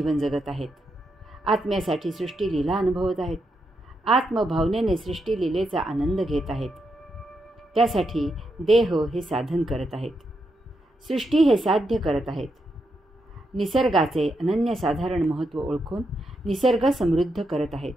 जगत आहेत. आत्म्यासाठी सृष्टी लीला अनुभवत आहेत. आत्मभावनेने सृष्टी लीलेचा आनंद घेत आहेत. त्यासाठी देह हे साधन करत आहेत. सृष्टी हे साध्य करत आहेत. निसर्गाचे अनन्यसाधारण महत्त्व ओळखून निसर्ग समृद्ध करत आहेत.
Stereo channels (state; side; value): normal; both; correlation 0.83